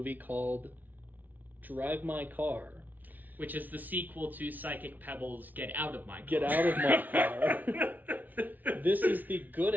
called Drive My Car. Which is the sequel to Psychic Pebbles' Get Out of My Car. Get out of my car. This is the good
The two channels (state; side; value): late; left; 0.081 ms